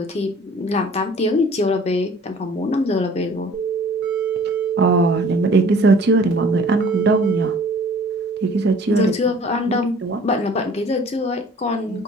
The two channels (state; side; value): normal; both; correlation 0.51